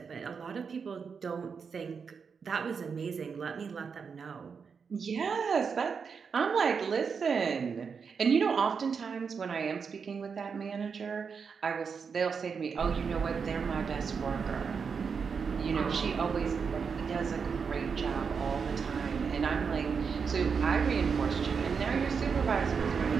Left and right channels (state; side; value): quieter; left; 5.9 dB